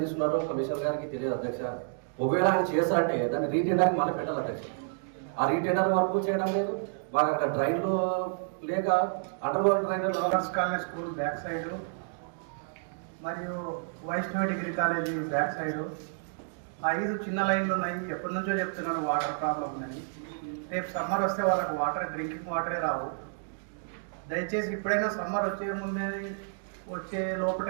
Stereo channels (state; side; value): silent; left; digital silence